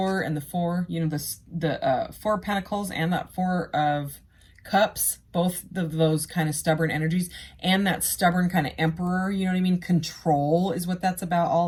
and the 4, you know, the 4 of Pentacles and that 4 of Cups, both of those kind of stubborn energies, and that stubborn kind of Emperor, you know what I mean? Control is what that's about,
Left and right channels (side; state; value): both; identical; correlation 1.00